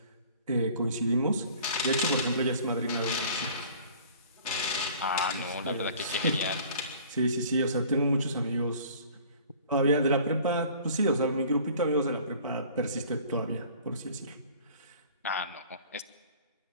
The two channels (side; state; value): both; inverted; correlation -0.49